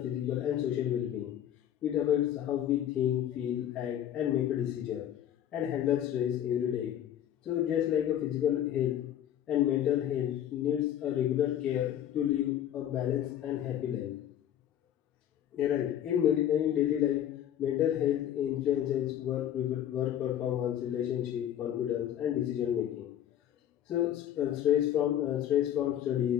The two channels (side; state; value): right; quieter; 10.8 dB